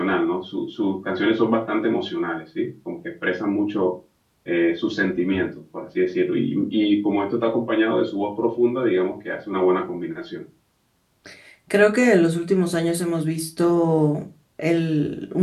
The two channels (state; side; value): identical; both; correlation 1.00